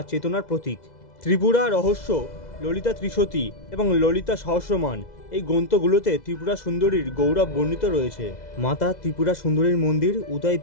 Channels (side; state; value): right; late; 2.0 ms